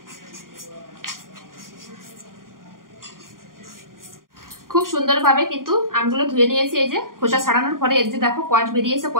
খুব সুন্দরভাবে কিন্তু আমগুলো ধুয়ে নিয়েছি। এই যে খোসা ছাড়ানোর পরে এই যে দেখো কষ বেরিয়েছে,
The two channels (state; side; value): late; left; 0.91 ms